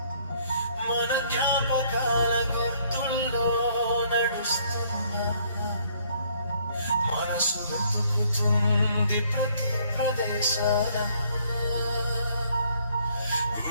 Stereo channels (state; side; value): inverted; both; correlation -0.64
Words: మన జ్ఞాపకాల గుర్తుల్లో నడుస్తున్నా మనసు వెతుకుతుంది ప్రతి ప్రదేశాన